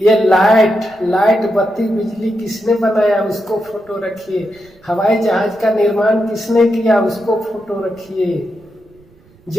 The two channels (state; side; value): noise; right; rumble, 29 dB below the sound